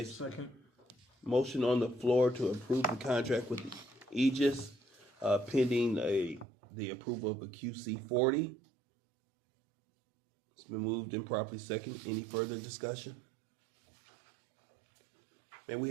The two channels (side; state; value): left; drops out; at 6.5 s